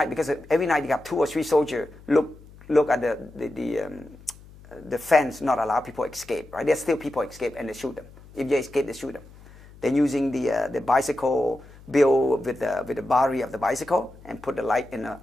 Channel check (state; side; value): noise; left; hum, 22 dB below the sound